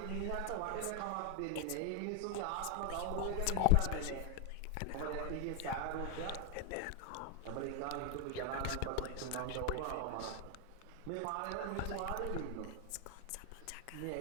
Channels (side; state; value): both; different; correlation 0.00